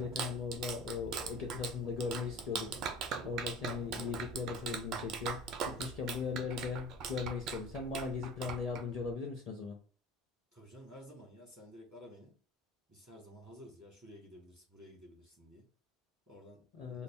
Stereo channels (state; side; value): normal; both; correlation 0.40